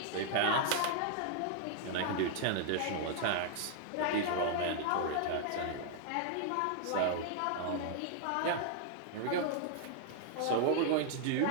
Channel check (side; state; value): both; different; correlation -0.01